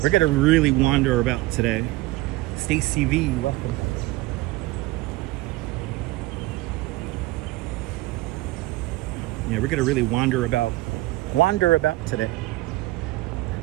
wander about today. Stacy V, welcome. Yeah, we're gonna really wander about today.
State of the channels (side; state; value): left; quieter; 19.3 dB